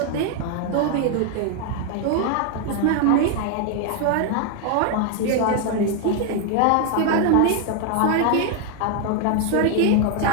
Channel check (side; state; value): both; different; correlation 0.00